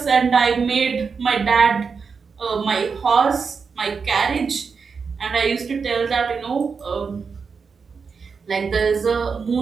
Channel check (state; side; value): quieter; left; 5.4 dB